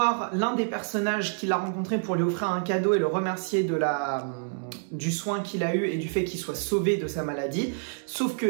l'un des personnages qu'il a rencontré pour lui offrir un cadeau et le remercier du soin qu'il a eu et du fait qu'il soit sauvé de sa maladie. Sauf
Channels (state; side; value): silent; left; digital silence